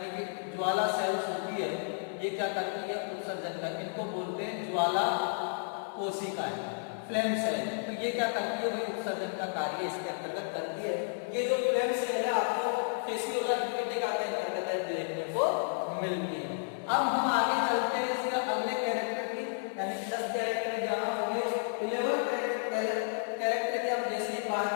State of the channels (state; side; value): silent; right; digital silence